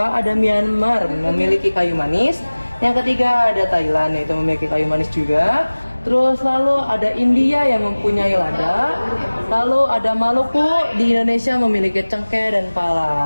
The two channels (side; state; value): both; inverted; correlation -1.00